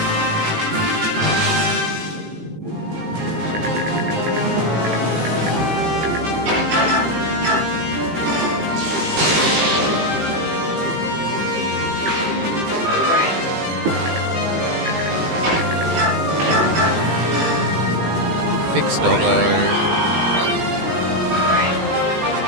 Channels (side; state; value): left; late; 18 ms